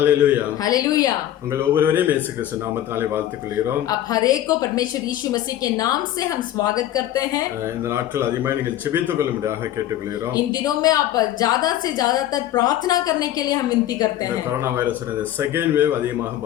hallelujah. உங்கள் ஒவ்வொருவரையும் இயேசு கிறிஸ்து நாமத்தினாலே வாழ்த்துக் கொள்கிறோம்। आप हर एक को परमेश्वर यीशु मसीह के नाम से हम स्वागत करते हैं। இந்த நாட்கள் அதிகமாக நீங்கள் ஜெபித்துக் கொள்ளும்படியாக கேட்டுக்கொள்கிறோம்। इन दिनों में आप ज्यादा से ज्यादातर प्रार्थना करने के लिए हम विनती करते हैं। கொரோனா வைரஸ் செகண்ட் வேவ் அதிகமாக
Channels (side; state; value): right; quieter; 12.5 dB